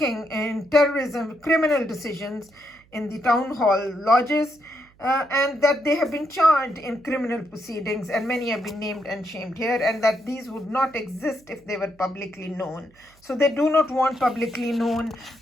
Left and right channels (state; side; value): noise; right; hum, 30 dB below the sound